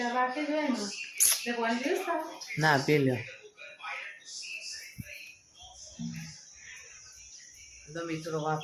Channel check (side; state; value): both; identical; correlation 1.00